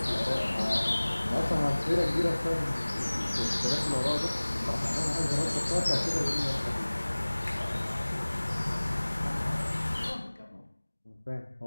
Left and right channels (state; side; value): inverted; both; correlation -1.00